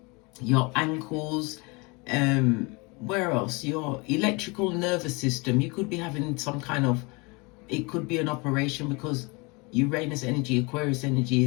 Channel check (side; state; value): right; quieter; 28.1 dB